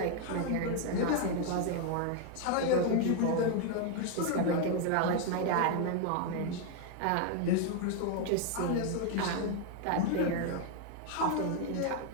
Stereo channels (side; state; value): both; different; correlation 0.00